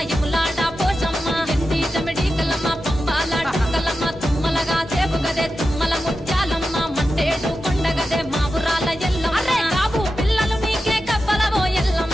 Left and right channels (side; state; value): both; normal; correlation 0.91